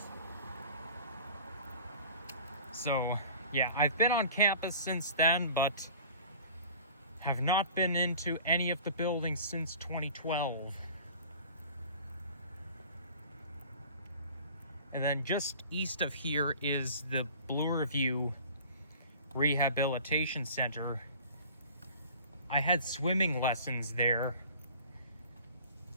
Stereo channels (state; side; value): inverted; both; correlation -0.44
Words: So yeah, I've been on campus since then, but have not been into any of the buildings since 2012. And then just east of here is the Blue Review Rehabilitation Center. I had swimming lessons there.